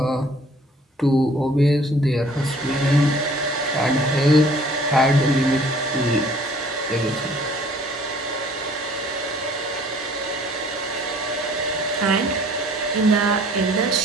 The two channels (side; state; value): both; normal; correlation 0.55